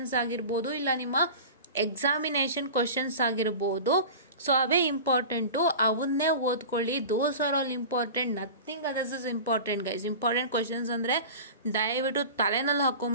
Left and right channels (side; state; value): both; inverted; correlation -0.34